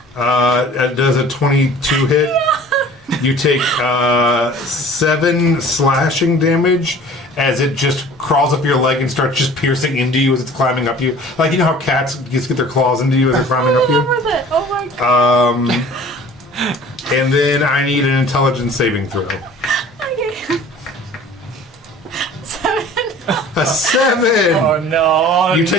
It does a 22 hit. You take 7 slashing damage as it just crawls up your leg and starts just piercing into you as it's climbing up you. Like, you know how cats just get their claws into you as they're climbing up you? With it. Oh my god. And then I need an intelligence saving throw. Okay. 7. A 7! Oh no! You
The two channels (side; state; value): both; normal; correlation 0.46